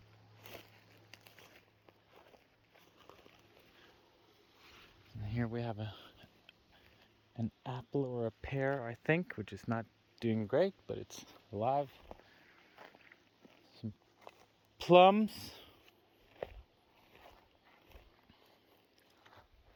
And here we have an apple or a pear, I think, which is not doing great, but it's alive. Some plums.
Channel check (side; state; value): both; identical; correlation 1.00